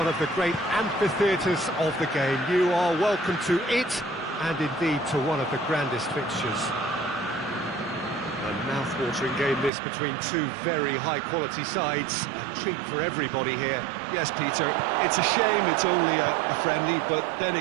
of the great amphitheatres of the game. You are welcome to it, and indeed to one of the grandest fixtures. A mouth-watering game this between two very high-quality sides. A treat for everybody here. Yes, Peter, it's a shame it's only a friendly, but then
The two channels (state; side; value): drops out; left; at 9.7 s